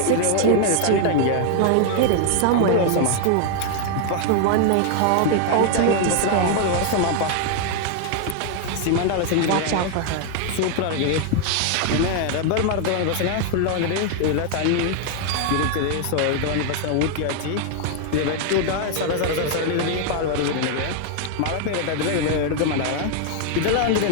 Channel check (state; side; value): different; both; correlation 0.00